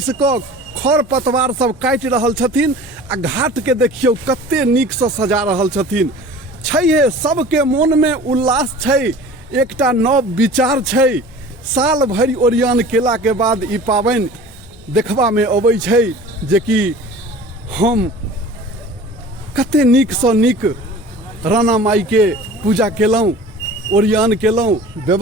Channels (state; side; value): normal; both; correlation 0.42